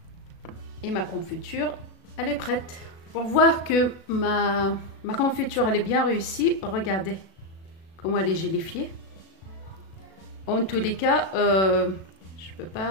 Et ma confiture, elle est prête. Pour voir que ma confiture elle est bien réussie, regardez comment elle est gélifiée. En tous les cas, je ne peux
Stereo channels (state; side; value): late; right; 37 ms